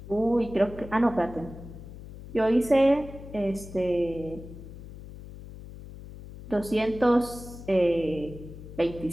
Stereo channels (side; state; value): left; noise; hum, 14 dB below the sound